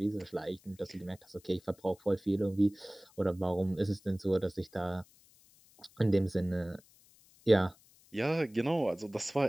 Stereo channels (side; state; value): left; noise; hiss, 28 dB below the sound